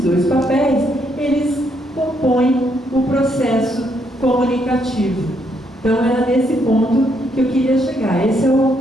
dois papéis, eles compõem o processo comunicativo. Então, era nesse ponto que eu queria chegar. Esse é o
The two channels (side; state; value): both; normal; correlation 0.74